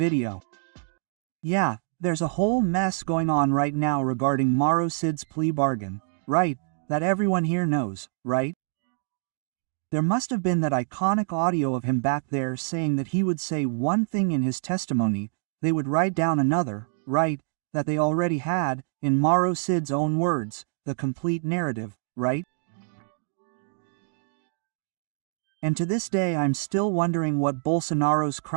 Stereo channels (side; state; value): left; silent; digital silence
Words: Yeah, there's a whole mess going on right now regarding Março's plea bargain, right? That everyone here knows, right? There must have been that iconic audio of him back there saying that he would say one thing in his testimony, they would write down another, right? That they already had, in Março's own words, the complete narrative, right? And to this day I'm still wondering what Bolsonaro's